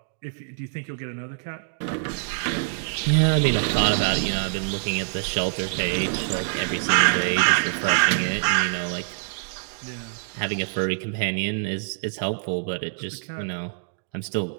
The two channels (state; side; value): silent; left; digital silence